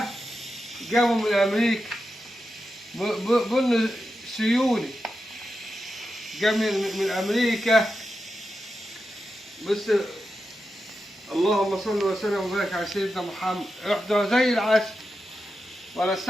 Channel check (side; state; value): both; normal; correlation 0.89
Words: جابه من امريكا، بن سيوني جاب من امريكا. بس اللهم صل وسلم وبارك على سيدنا محمد، يحضر زي العسل ولا